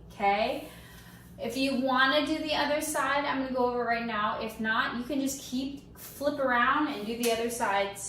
okay? If you want to do the other side, I'm going to go over right now. If not, you can just flip around and do the other side,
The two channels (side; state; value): both; identical; correlation 1.00